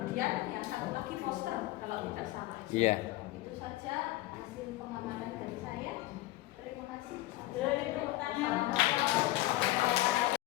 yang satu lagi poster kalau tidak salah. Iya. Itu saja hasil pengamatan dari saya. Terima kasih. Boleh tepuk tangan.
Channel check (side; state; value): right; quieter; 17.3 dB